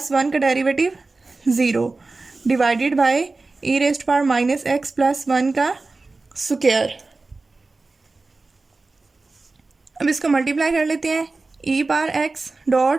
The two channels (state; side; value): quieter; left; 3.6 dB